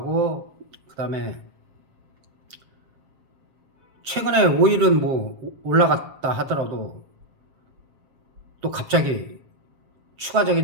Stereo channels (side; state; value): left; late; 7.5 ms